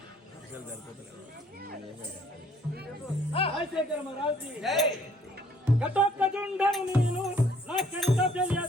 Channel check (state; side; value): normal; both; correlation 0.61